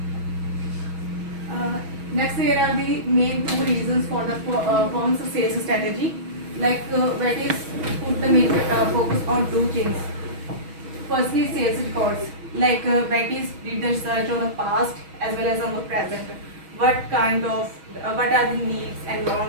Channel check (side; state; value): left; late; 6.2 ms